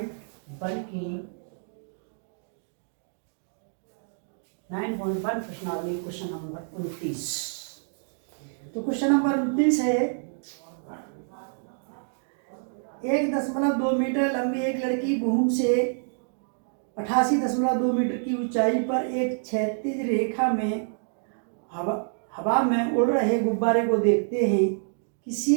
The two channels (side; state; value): left; silent; digital silence